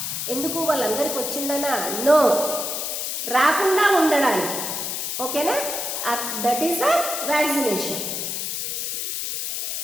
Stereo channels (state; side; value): noise; left; hiss, 3 dB below the sound